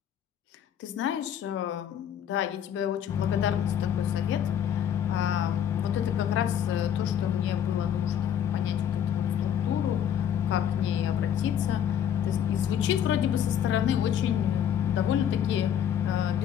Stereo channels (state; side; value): quieter; right; 9.4 dB